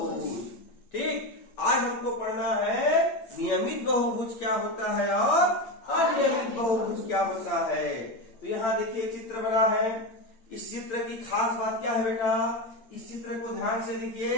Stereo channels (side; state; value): right; late; 8.8 ms